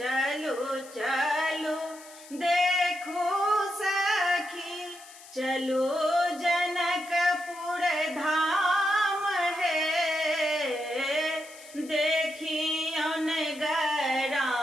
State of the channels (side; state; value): left; noise; hiss, 19 dB below the sound